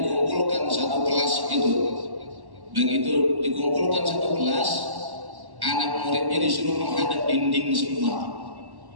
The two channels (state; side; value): late; left; 1.1 ms